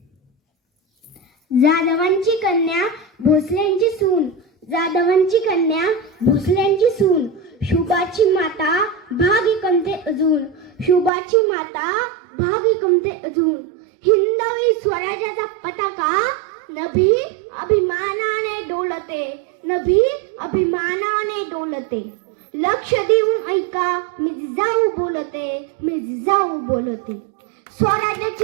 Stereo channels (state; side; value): drops out; left; at 11.1 s